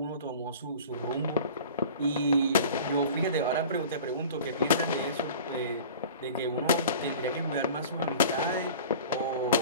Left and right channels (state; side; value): inverted; both; correlation -0.41